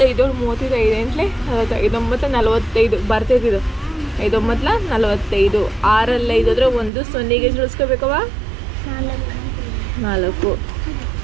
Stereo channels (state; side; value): drops out; left; at 6.9 s